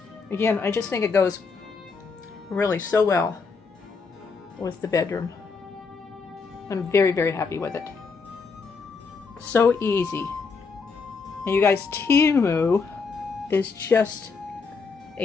Again, I just think it goes really so well with the bedroom. I'm very, very happy with it. So easy. And you guys, Temu is just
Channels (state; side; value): quieter; right; 4.8 dB